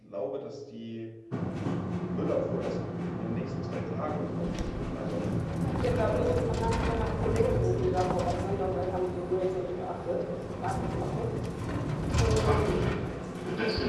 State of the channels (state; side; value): identical; both; correlation 1.00